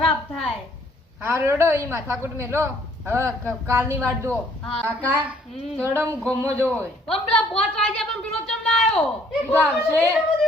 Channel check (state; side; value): normal; both; correlation 0.62